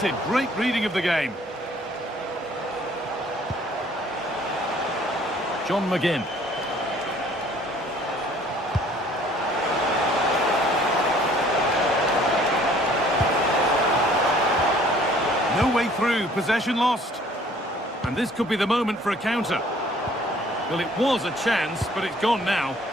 Great reading of the game. John McGinn. No way through. Possession lost. And this could be the moment for a counter. Well, it was a chance, but it's gone now.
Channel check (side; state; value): both; normal; correlation 0.56